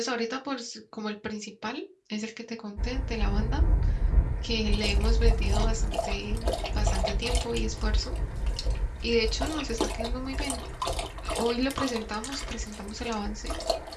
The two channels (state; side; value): identical; both; correlation 1.00